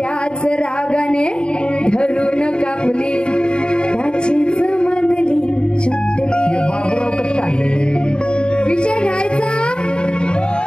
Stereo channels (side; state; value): right; late; 0.051 ms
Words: रागाने धरून कापली, त्याचीच मधली चुटली. विषय घ्यायचा.